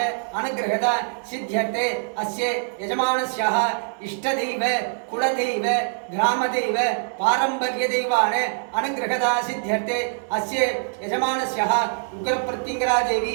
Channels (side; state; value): left; silent; digital silence